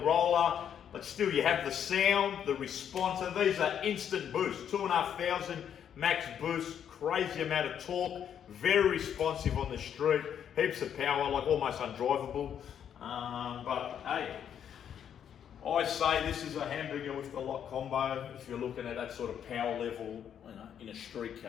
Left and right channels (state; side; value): quieter; right; 8.9 dB